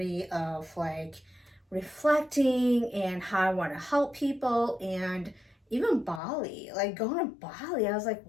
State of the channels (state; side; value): drops out; right; at 6.2 s